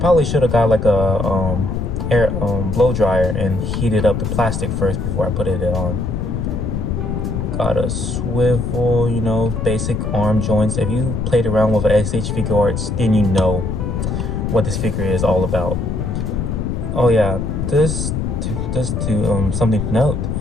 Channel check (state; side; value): noise; left; rumble, 2 dB below the sound